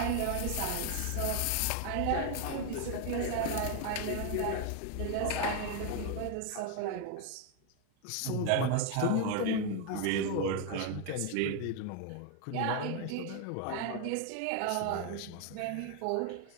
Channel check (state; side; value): different; both; correlation 0.01